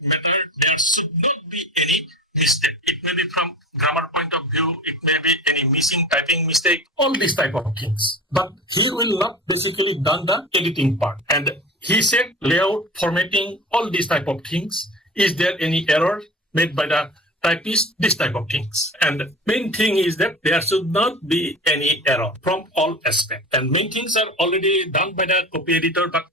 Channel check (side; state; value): both; normal; correlation 0.34